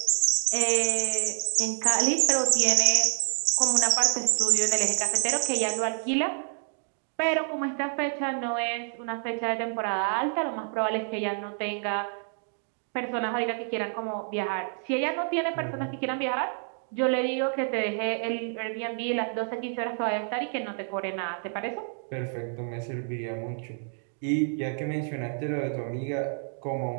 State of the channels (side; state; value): left; silent; 59 dB below the other